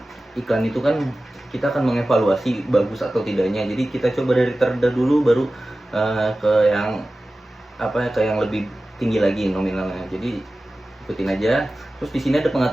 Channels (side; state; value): both; normal; correlation 0.95